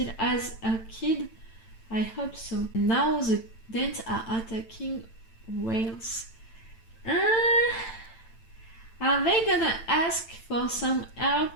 has a kid. I hope so. Now the Danes are attacking Wales. Are they gonna ask for some help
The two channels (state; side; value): late; right; 8.9 ms